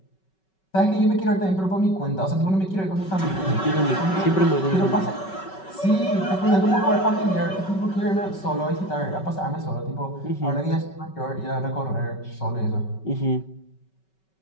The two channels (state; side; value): late; right; 5.3 ms